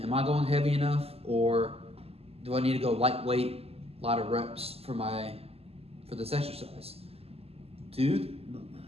I going heavy enough, or do I need to go lightweight, a lot of reps for this exercise? Dude,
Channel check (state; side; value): late; left; 0.29 ms